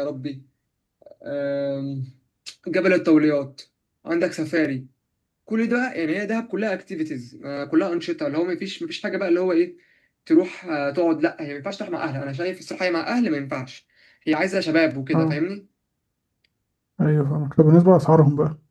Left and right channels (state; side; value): identical; both; correlation 1.00